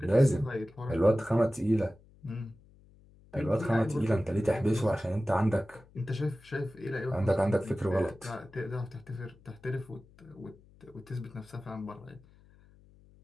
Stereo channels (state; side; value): noise; left; hum, 26 dB below the sound